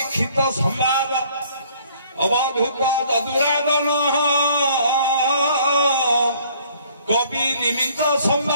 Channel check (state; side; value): inverted; both; correlation -0.59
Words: संवाद अवधूत ददुरादन कवि निमित्त